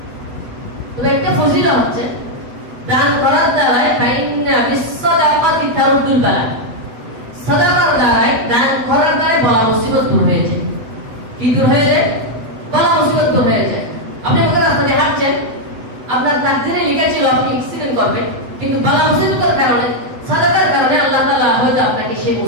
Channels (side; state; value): left; late; 8.0 ms